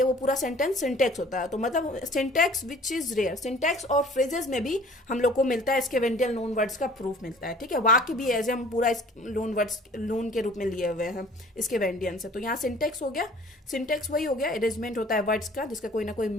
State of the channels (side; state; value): both; normal; correlation 0.50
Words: वो पूरा सेंटेंस सिंटेक्स होता है। तो मतलब syntax which is rare, syntax और फ्रेजेस में भी हम लोग को मिलता है स्केवेंडियल लोन वर्ड्स का प्रूफ मिलता है। ठीक है, वाक्य भी एज हम पूरा लोन वर्ड्स लोन के रूप में लिए हुए हैं स्केवेंडियन से। तो यहाँ सिंटेक्स हो गया, सिंटेक्स वही हो गया, अरेंजमेंट होता है वर्ड्स का जिसका कोई ना कोई